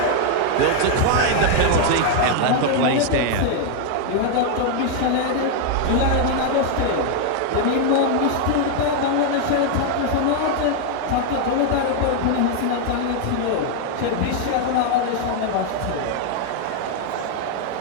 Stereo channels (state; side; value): different; both; correlation 0.00